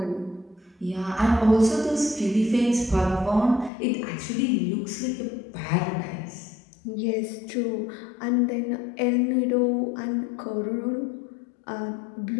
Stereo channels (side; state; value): right; drops out; at 3.7 s